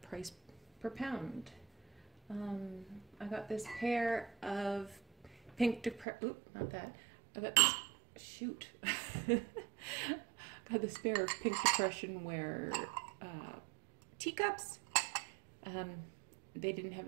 price per pound. I got this pair of pink not that. I got this, shoot. Got this pair of pink depression wear teacups. They didn't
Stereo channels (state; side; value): drops out; left; at 6.1 s